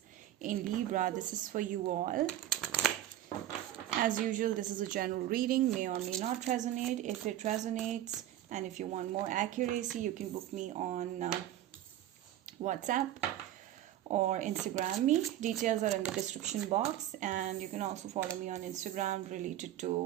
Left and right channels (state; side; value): quieter; left; 12.7 dB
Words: in Libra. This is for you all. As usual, this is a general reading. May or may not resonate. If it resonates and if you want more accuracy, you can book me on WhatsApp or Instagram me. Details are in the description box, and you can also follow me on Instagram related